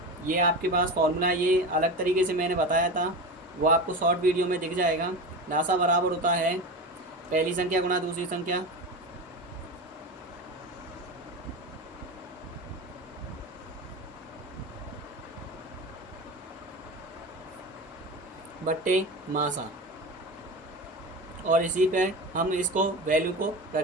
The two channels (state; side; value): normal; both; correlation 0.25